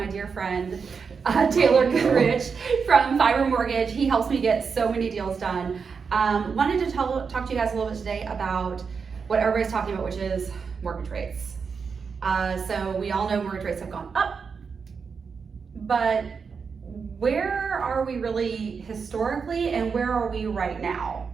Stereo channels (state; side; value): quieter; left; 5.6 dB